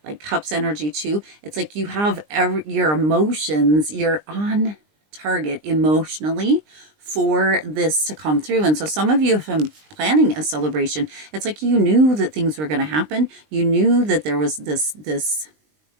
like Cups energy too. It's like you have your emotions, you're on target emotionally for this to come through. And so some of you have been planning a celebration. It's like you knew that things were going to happen. You knew that there was this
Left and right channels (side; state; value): left; late; 20 ms